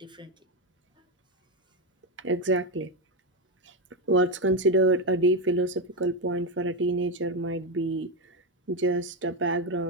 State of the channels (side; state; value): both; normal; correlation 0.09